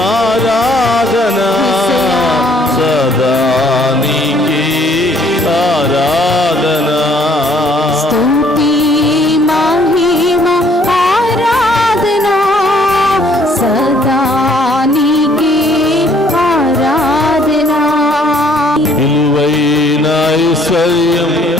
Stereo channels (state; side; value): normal; both; correlation 0.62